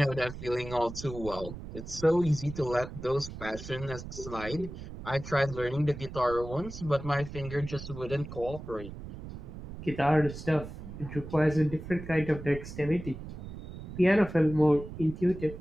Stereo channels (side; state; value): right; noise; rumble, 11 dB below the sound